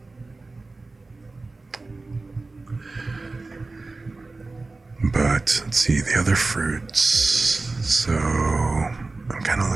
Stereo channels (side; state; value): left; quieter; 3.4 dB